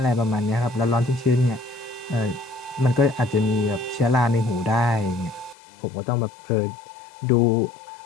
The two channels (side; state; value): right; drops out; at 5.6 s